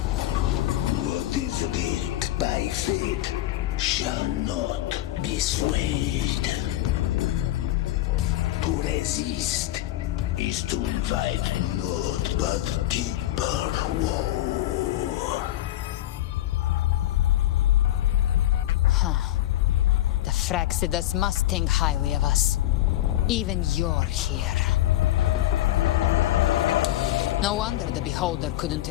What is writ by fate shall not be swayed. To resist is to invite naught but deeper woe. Huh. The Fraxidus must think highly of us. Even you're here. No wonder the Beholder couldn't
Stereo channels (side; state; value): right; quieter; 14.4 dB